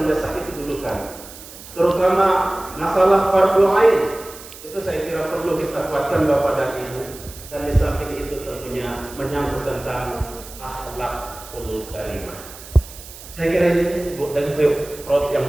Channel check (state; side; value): noise; right; hiss, 16 dB below the sound